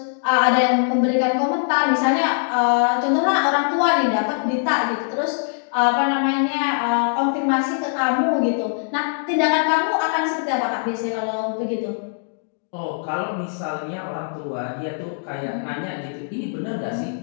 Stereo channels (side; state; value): right; silent; digital silence